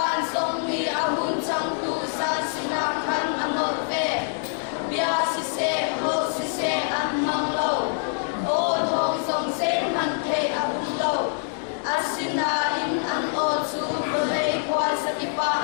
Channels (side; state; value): right; silent; digital silence